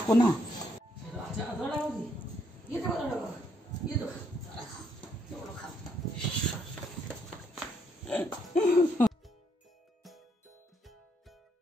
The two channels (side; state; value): both; normal; correlation 0.73